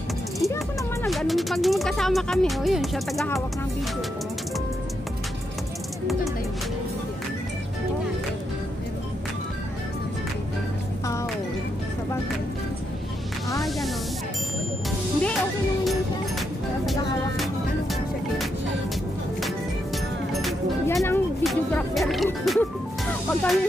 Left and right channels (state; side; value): normal; both; correlation 0.81